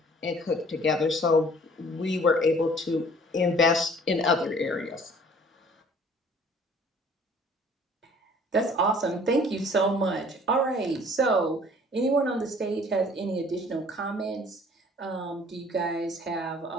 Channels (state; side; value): normal; both; correlation 0.53